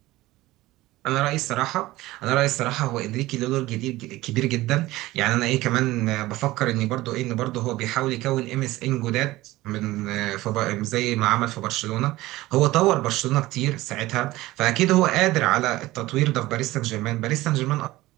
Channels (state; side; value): quieter; left; 17.9 dB